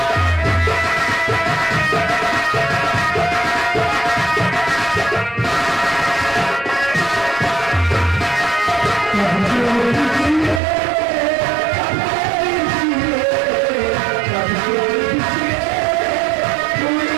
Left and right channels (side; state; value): left; drops out; at 10.6 s